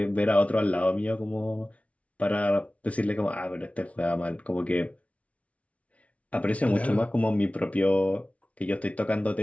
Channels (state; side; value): late; right; 0.065 ms